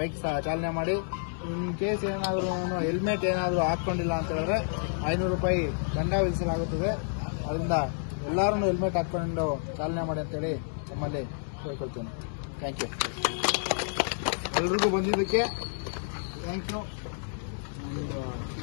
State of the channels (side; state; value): right; silent; digital silence